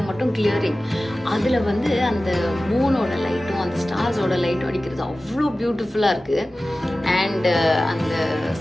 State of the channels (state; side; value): normal; both; correlation 0.96